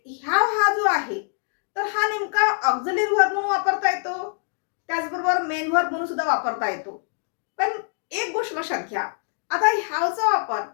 ह्याव हा जो आहे तर हा नेमका ऑक्झिलरी वर्ब म्हणून वापरता येतो, त्याचबरोबर मेन वर्ब म्हणून सुद्धा वापरता येतो. पण एक गोष्ट लक्षात घ्या, आता ह्यावचा वापर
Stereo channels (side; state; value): right; silent; 57 dB below the other